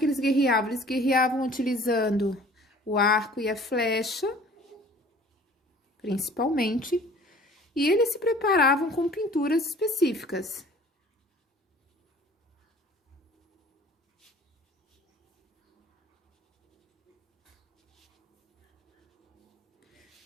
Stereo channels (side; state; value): both; normal; correlation 0.50